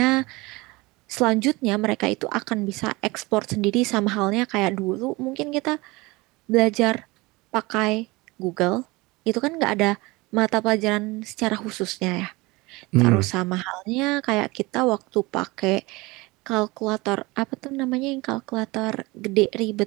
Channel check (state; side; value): quieter; left; 23.1 dB